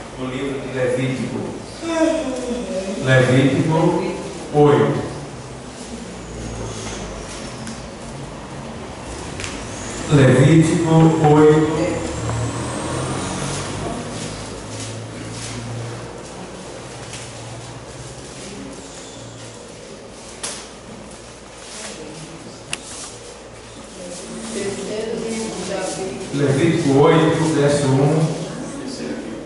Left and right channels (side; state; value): both; identical; correlation 1.00